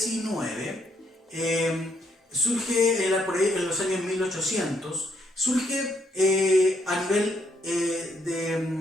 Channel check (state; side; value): normal; both; correlation 0.73